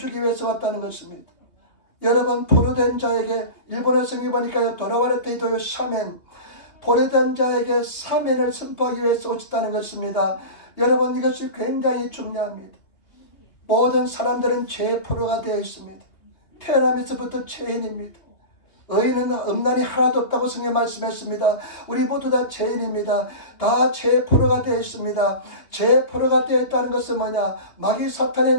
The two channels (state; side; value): late; right; 3.0 ms